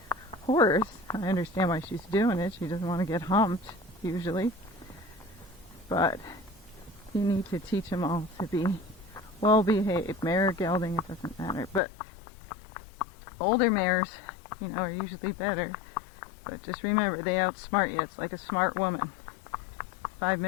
horse. I understand why she's doing it. She doesn't want to get humped usually, but you need to teach them all to be well behaved. Mare or gelding, it doesn't matter. But older mares, you know, are usually better. But just remember, they outsmart you. It's like a smart woman. 5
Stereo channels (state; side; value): drops out; right; at 11.8 s